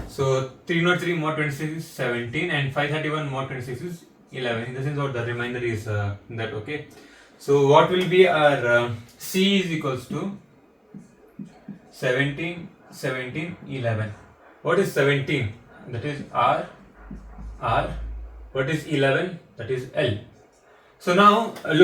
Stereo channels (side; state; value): both; identical; correlation 1.00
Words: So 303 mod 26 is 17 and 531 mod 26 is 11. In the sense what the remainder is that, okay. So what will be our C is equals to 17, 17, 11. What is 17? That is R. What is 11? That is L. So now